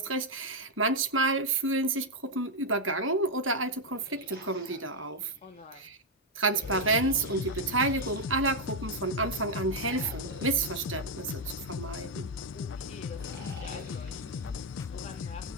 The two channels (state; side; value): normal; both; correlation 0.01